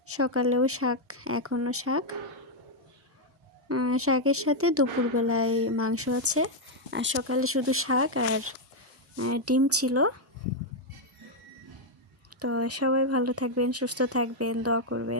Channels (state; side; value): normal; both; correlation 0.00